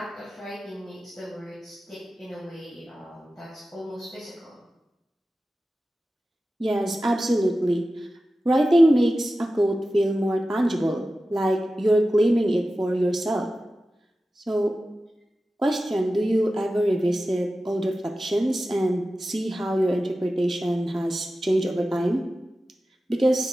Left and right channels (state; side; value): normal; both; correlation 0.94